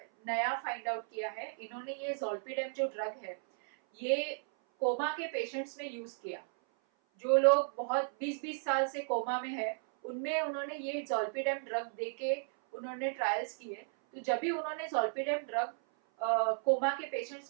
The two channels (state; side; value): silent; left; 55 dB below the other